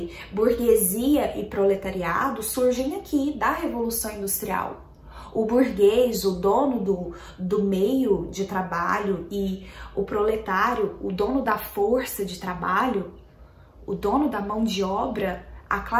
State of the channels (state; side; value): identical; both; correlation 1.00